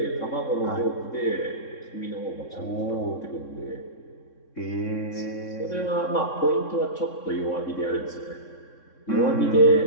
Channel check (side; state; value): right; late; 3.6 ms